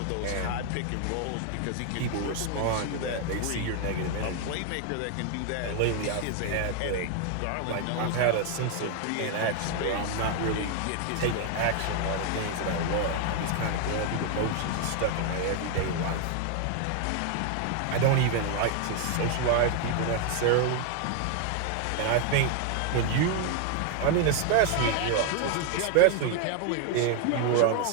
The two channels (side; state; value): both; different; correlation 0.00